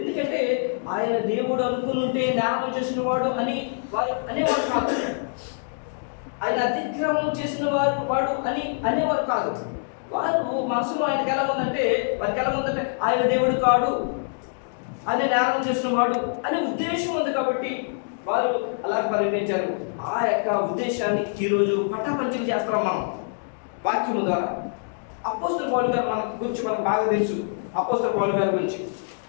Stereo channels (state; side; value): silent; right; digital silence